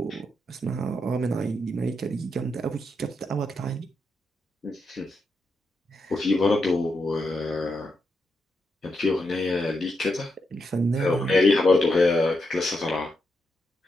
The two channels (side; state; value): both; normal; correlation 0.83